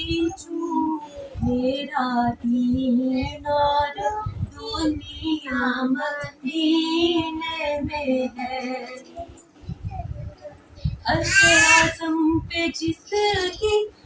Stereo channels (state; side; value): identical; both; correlation 1.00